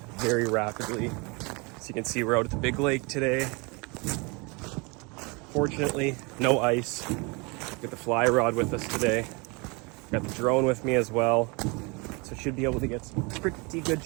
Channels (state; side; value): quieter; left; 29.1 dB